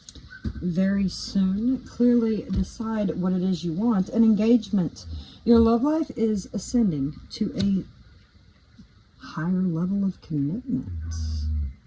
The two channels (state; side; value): identical; both; correlation 1.00